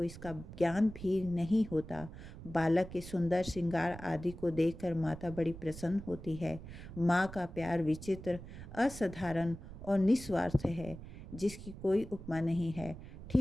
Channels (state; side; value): noise; right; rumble, 13 dB below the sound